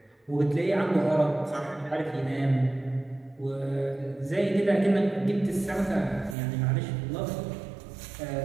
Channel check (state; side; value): drops out; left; at 6.4 s